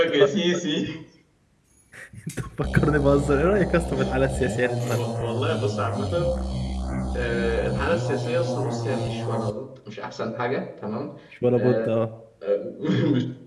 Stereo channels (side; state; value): both; identical; correlation 1.00